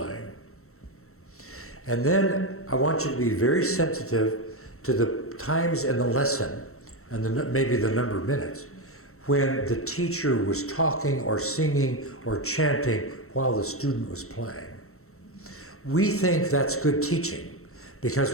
And then I want you to be very sensitive to the times in the lesson and maybe the number of minutes when the teacher was talking or singing or chanting while the student was playing. We think that's good teaching because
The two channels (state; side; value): late; right; 0.63 ms